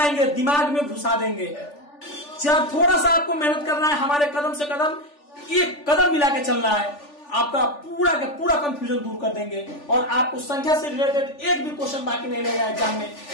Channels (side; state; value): right; late; 3.4 ms